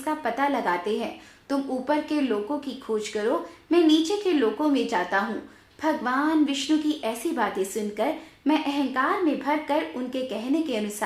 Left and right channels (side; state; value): both; identical; correlation 1.00